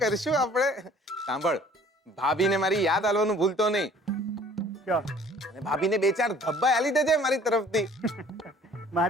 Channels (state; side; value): normal; both; correlation 0.53